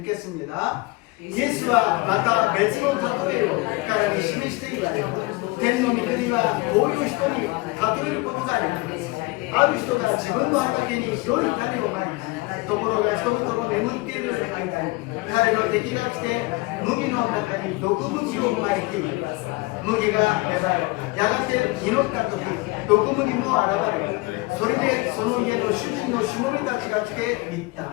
읽겠습니다. イエスはまた別の例えを彼に示して言われた。天の御国はこういう人に例えることができます。ある人が自分の畑に良い種をまいた。ところが人々の眠っている間に彼の敵が来て麦の中に毒麦をまいている。麦が芽生え、やがて実った時、毒麦も現れる。それでその家の主人のしもべたちが来て言っ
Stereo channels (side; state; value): right; quieter; 23.4 dB